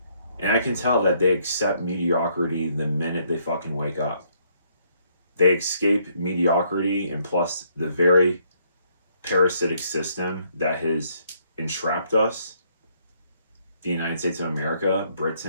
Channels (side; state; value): both; inverted; correlation -0.69